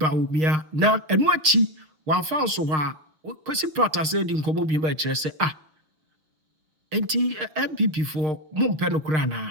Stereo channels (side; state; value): left; late; 6.5 ms